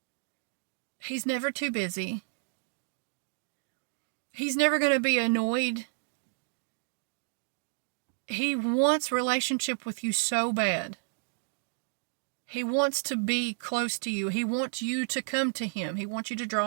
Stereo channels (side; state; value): left; silent; digital silence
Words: He's never too busy. He's never going to be annoyed. He wants relationship with you so bad. He wants to be close to you. He wants you to come to him. He wants you to